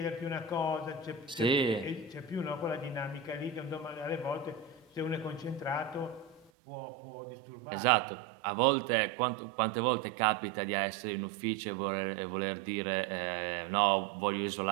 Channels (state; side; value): drops out; left; at 6.5 s